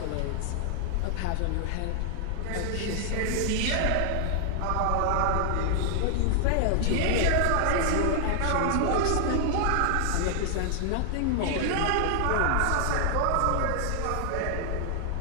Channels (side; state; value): both; different; correlation 0.00